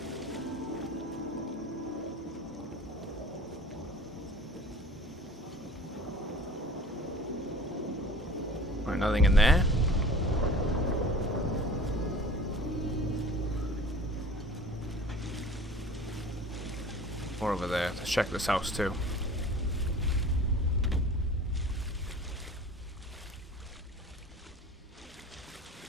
Right, nothing in there. Or over there. Let's check this house too.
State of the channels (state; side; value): normal; both; correlation 0.43